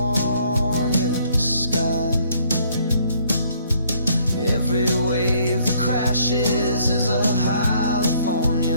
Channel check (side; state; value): both; inverted; correlation -0.65